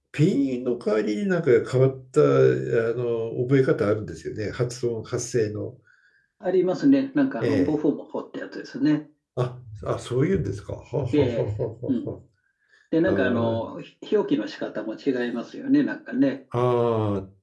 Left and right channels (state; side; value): identical; both; correlation 1.00